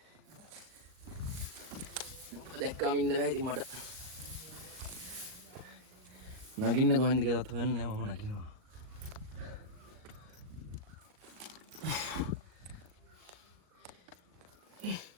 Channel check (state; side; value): late; left; 38 ms